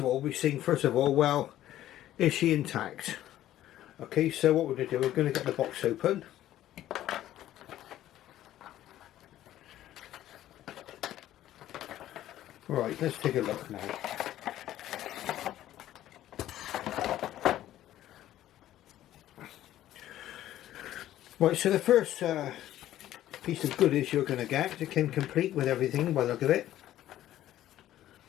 all, well, is she intact? Okay, so what we're going to do, we're going to get the box open. Right, let's take a look now. Right, so the first piece of goodies you're going to get, it came complete with everything by the look of it.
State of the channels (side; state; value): right; quieter; 13.2 dB